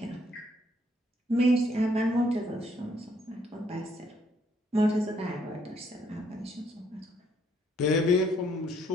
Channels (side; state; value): both; normal; correlation 0.68